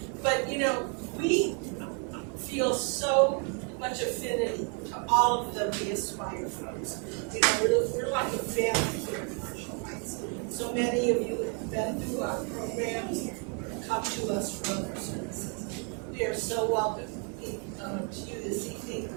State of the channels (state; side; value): quieter; left; 37.8 dB